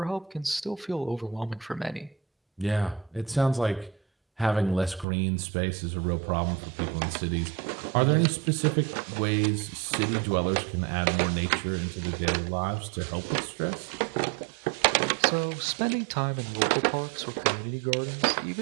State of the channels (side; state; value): left; drops out; at 5.1 s